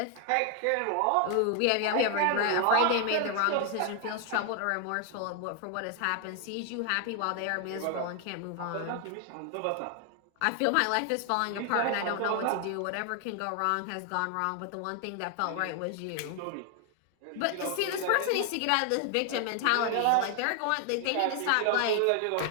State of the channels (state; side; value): different; both; correlation 0.00